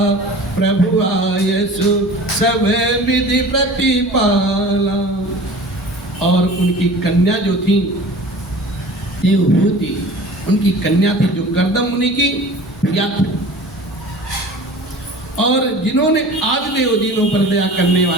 प्रभु आयसु सब विधि प्रतिपाला। और उनकी कन्या जो थी देवहूति, उनकी कन्या थी जो कर्दम मुनि की प्रिया थी, और जिन्होंने आदिदेव दीनों पर दया करने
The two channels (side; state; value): both; normal; correlation 0.41